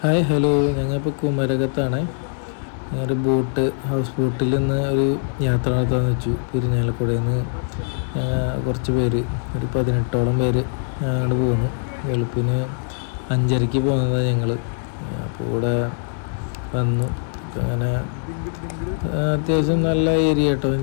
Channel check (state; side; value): silent; right; 60 dB below the other